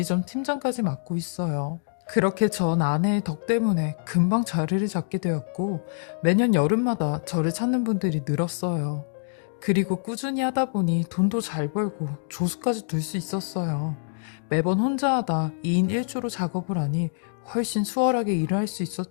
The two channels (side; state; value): right; silent; digital silence